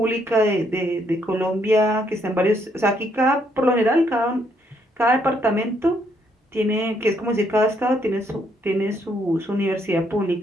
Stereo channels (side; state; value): both; normal; correlation 0.72